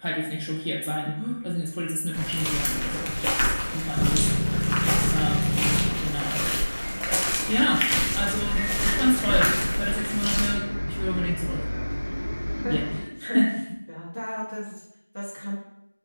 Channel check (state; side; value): inverted; both; correlation -1.00